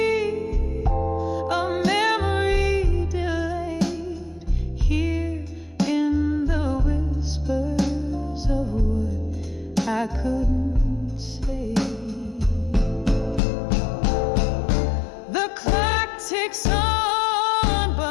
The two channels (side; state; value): right; drops out; at 13.4 s